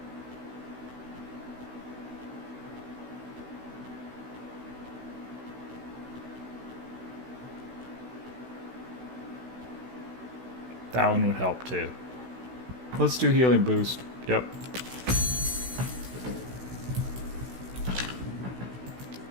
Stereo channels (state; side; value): late; left; 16 ms